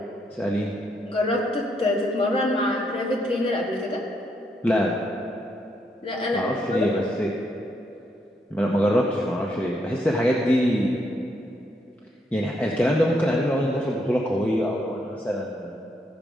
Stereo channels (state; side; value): normal; both; correlation 0.76